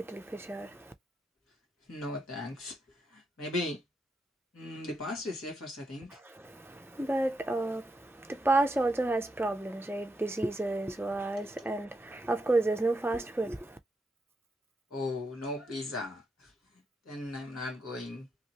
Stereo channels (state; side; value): normal; both; correlation 0.82